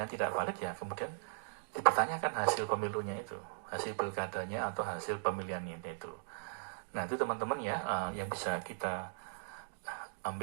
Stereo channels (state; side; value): silent; left; digital silence